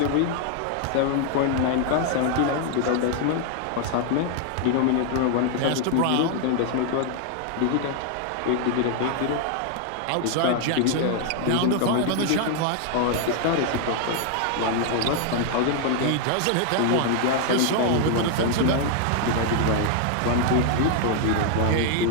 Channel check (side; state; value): both; different; correlation 0.00